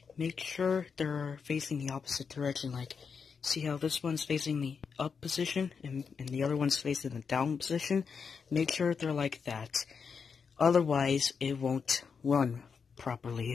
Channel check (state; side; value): quieter; right; 5.9 dB